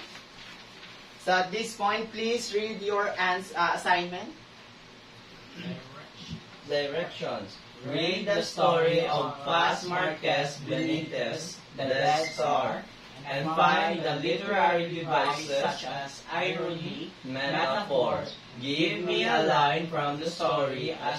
So at this point, please read your assignment. Directions. Read the story of Paz Marquez Benitez, The Death Star, and find the literary devices such as irony, metaphor. Give me a line from the story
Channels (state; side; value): identical; both; correlation 1.00